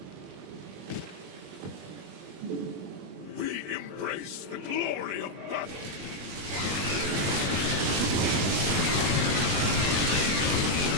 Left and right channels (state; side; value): late; left; 21 ms